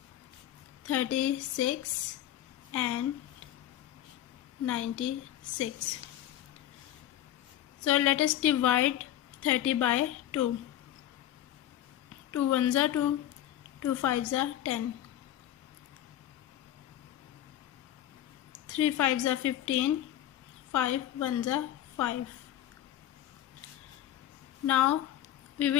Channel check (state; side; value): quieter; right; 12.3 dB